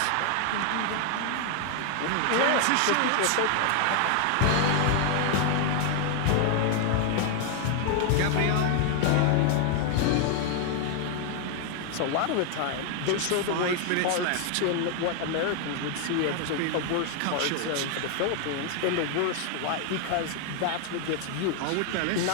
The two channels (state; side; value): different; both; correlation 0.00